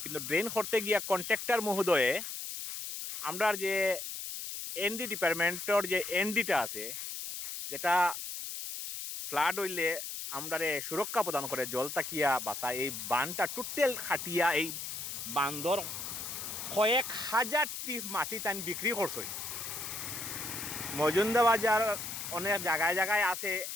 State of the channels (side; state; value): left; noise; hiss, 6 dB below the sound